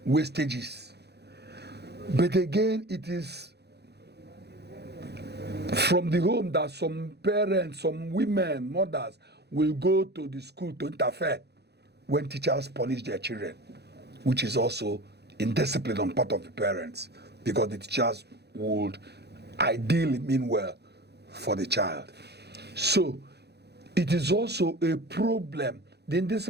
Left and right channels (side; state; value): left; late; 0.48 ms